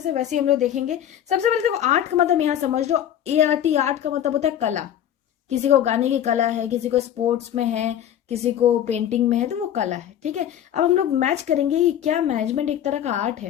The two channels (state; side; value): quieter; right; 10.5 dB